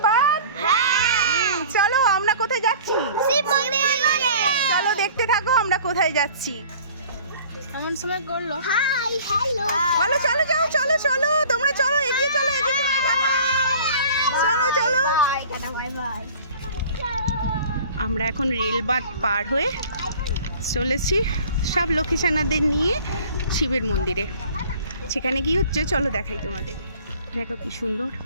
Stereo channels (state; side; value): inverted; both; correlation -0.47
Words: বাদ। চলো আমরা কোথায় যাচ্ছি? চলো দেখতে থাকো আমরা কোথায় যাচ্ছি। এমন সময় করলো। হাই হ্যালো চলো চলো যাও, চলো চলো তোমরা চলো, এগিয়ে চলো, এগিয়ে চলো, চলো চলো। Bye bye. আমরা এখন রেলবাত পার হয়ে চলেছি সব লক্ষ্মীছানাদের নিয়ে শিবের মন্দিরে। সেখানে কি হচ্ছে চলো দেখাই তোমাদের। দেখো কি সুন্দর